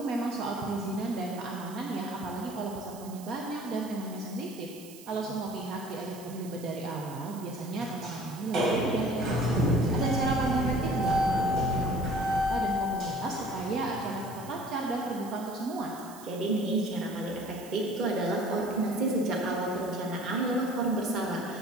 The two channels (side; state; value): right; noise; hiss, 18 dB below the sound